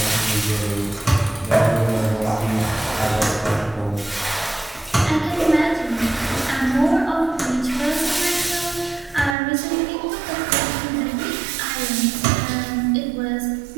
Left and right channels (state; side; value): drops out; left; at 9.3 s